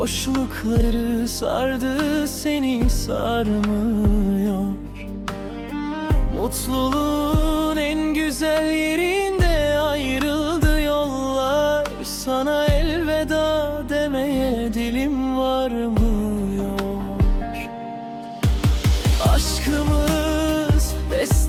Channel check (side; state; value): both; identical; correlation 1.00